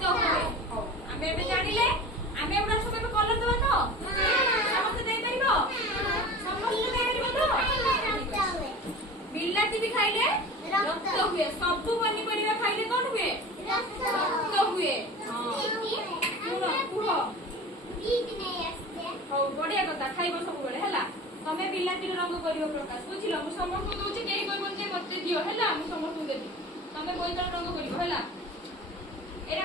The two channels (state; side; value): normal; both; correlation 0.36